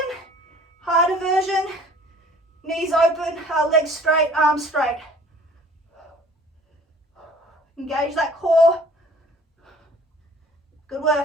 Harder version, knees open, legs straight, arms straight. Engage that core. Good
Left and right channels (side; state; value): both; normal; correlation 0.51